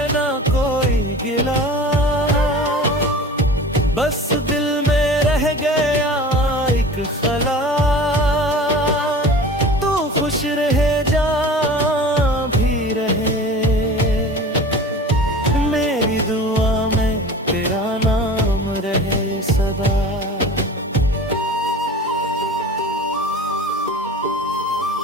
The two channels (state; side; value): normal; both; correlation 0.39